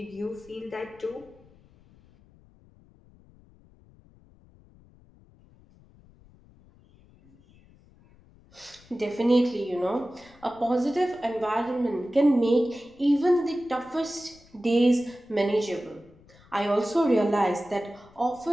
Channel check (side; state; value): left; noise; rumble, 27 dB below the sound